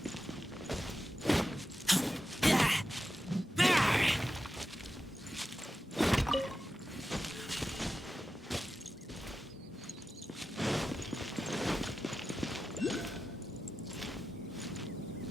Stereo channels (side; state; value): both; normal; correlation 0.91